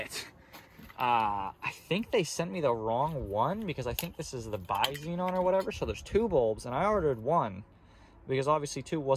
I think they sent me the wrong one because I think this is the bi-xenon or whatever. So there's 2 bulbs and I ordered 1 because obviously 2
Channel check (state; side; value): identical; both; correlation 1.00